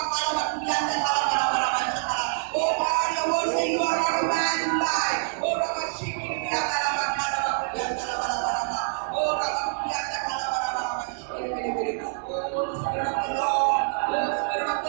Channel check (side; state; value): left; silent; digital silence